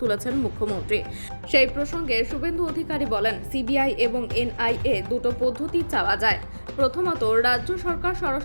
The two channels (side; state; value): both; inverted; correlation -1.00